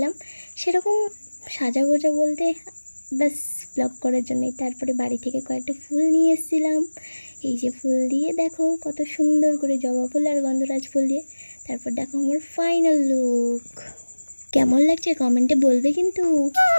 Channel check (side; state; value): both; inverted; correlation -1.00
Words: সেরকম সাজাগোজা বলতে ব্যাস ব্লগ করার জন্যই। তারপরে বাড়ি থেকে কয়েকটা ফুল নিয়ে এসেছিলাম। এই যে ফুল দিয়ে দেখো কত সুন্দর করে, জবা ফুল আর গন্ধরাজ ফুল দিয়ে। তারপর দেখো আমার ফাইনাল লুক কেমন লাগছে কমেন্টে বলবে কিন্তু।